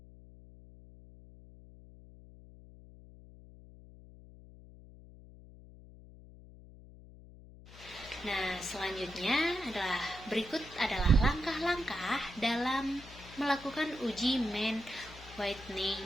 Nah, selanjutnya berikut adalah langkah-langkah dalam melakukan uji main Whitney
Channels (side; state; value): left; noise; hum, 19 dB below the sound